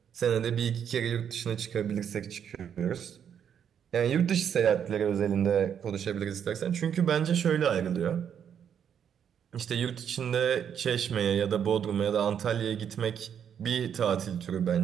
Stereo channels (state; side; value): quieter; left; 8.4 dB